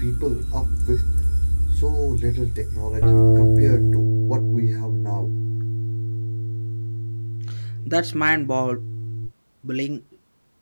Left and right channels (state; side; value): inverted; both; correlation -1.00